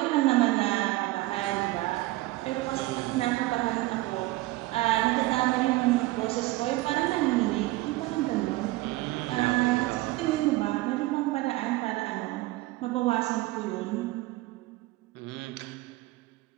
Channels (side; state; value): left; quieter; 19.3 dB